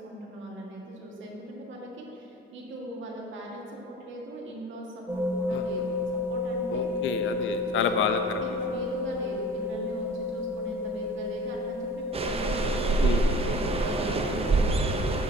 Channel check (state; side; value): normal; both; correlation 0.40